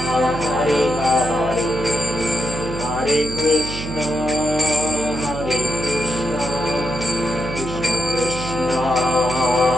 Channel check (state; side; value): noise; right; hum, 7 dB below the sound